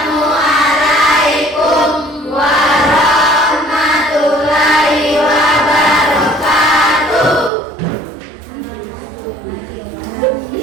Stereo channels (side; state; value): left; drops out; at 7.5 s